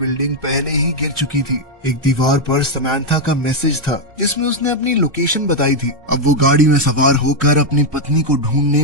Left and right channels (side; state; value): both; normal; correlation 0.01